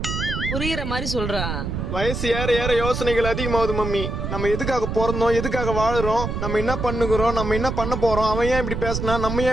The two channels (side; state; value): right; noise; rumble, 3 dB below the sound